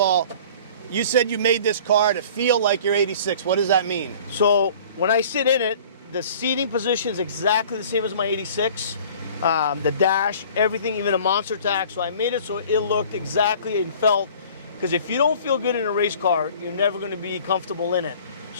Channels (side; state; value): both; inverted; correlation -0.47